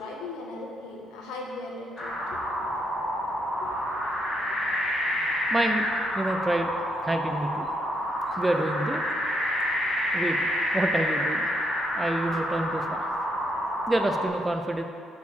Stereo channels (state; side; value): normal; both; correlation 0.77